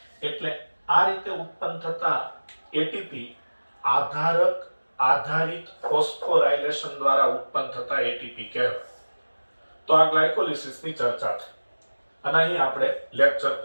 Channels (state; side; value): inverted; both; correlation -1.00